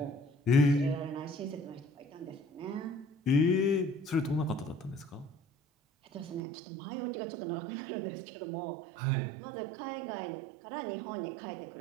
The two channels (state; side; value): drops out; left; at 6.4 s